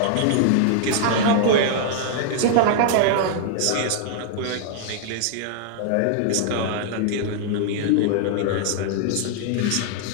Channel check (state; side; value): different; both; correlation -0.01